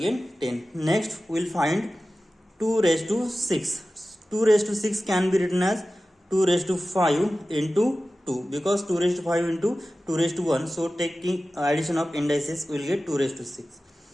10. Next we'll find 2 raised to 6. 2 raised to 6 can be written as 2 raised to 5 into 2, because 2 raised to 5 into 2 raised to 1. So taking addition of indices we will get 2 raised to 6.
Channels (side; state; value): both; normal; correlation 0.95